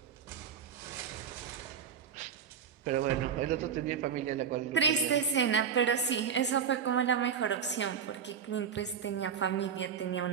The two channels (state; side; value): quieter; left; 7.3 dB